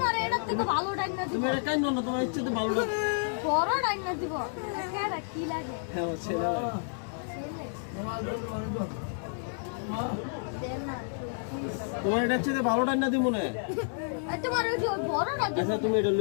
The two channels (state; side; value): silent; right; digital silence